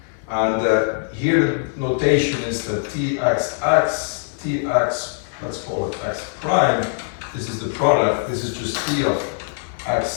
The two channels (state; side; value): silent; right; digital silence